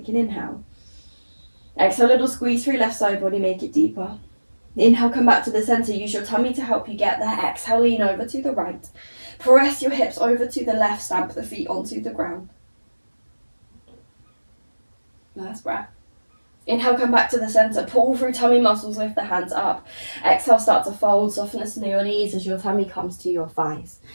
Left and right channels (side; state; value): both; inverted; correlation -1.00